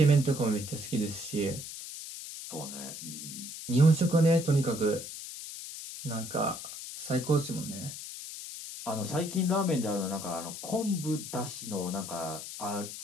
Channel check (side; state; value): left; noise; hiss, 10 dB below the sound